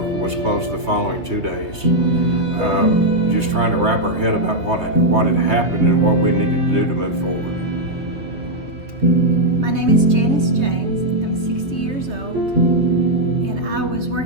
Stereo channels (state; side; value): late; left; 3.2 ms